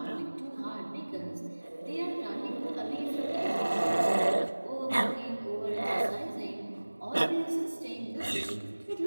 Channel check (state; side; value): inverted; both; correlation -1.00